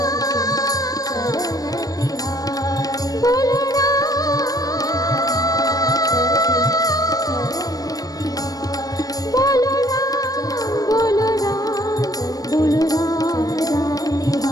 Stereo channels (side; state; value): right; late; 0.18 ms